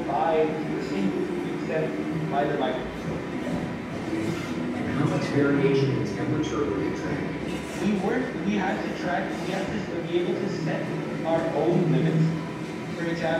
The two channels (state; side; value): identical; both; correlation 1.00